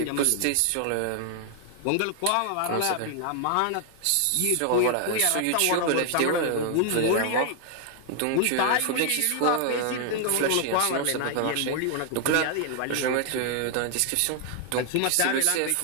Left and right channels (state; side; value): different; both; correlation 0.00